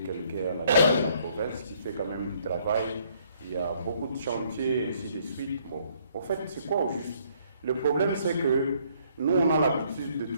à la tête de la province qui fait quand même du travail. Il y a beaucoup de chantiers, ainsi de suite. Bon, en fait, c'est quoi au juste? Le problème, c'est que nous, on a l'habitude de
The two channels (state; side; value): inverted; both; correlation -0.66